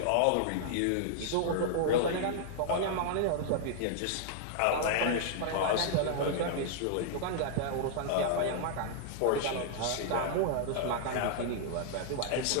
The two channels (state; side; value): different; both; correlation -0.01